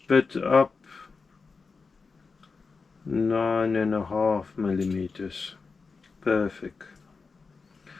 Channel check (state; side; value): quieter; right; 4.6 dB